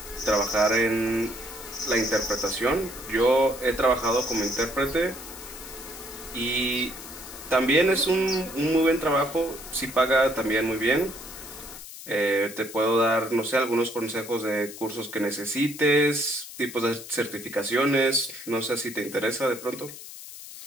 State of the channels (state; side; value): noise; left; hiss, 14 dB below the sound